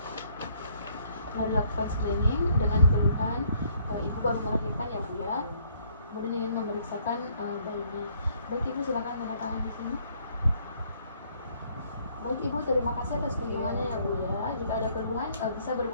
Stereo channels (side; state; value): both; inverted; correlation -0.65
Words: Setelah dilakukan screening dengan keluhan ibu baru melahirkan ya Bu ya, kemudian ingin memeriksakan bayinya. Baik Ibu, silakan tanda tangan di sini. Baik Ibu, terima kasih atas kunjungannya ya Bu ya. Jika ada keluhan bisa